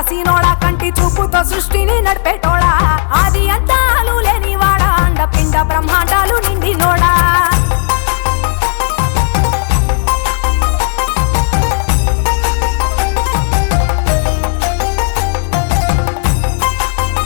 కంటి చూపుతో సృష్టిని నడిపేటోడా ఆది అంతాలు లేనివాడా అండపిండ బ్రహ్మాండాలు నిండినోడా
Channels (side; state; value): right; silent; 59 dB below the other